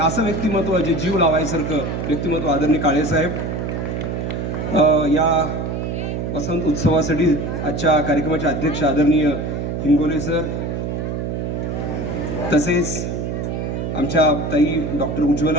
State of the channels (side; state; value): right; noise; hum, 3 dB below the sound